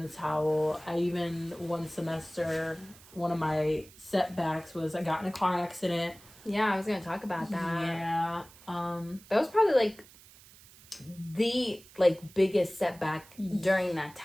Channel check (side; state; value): right; noise; hiss, 23 dB below the sound